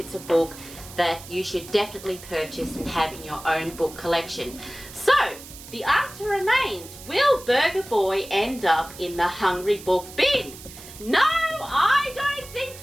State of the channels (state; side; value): noise; right; hiss, 16 dB below the sound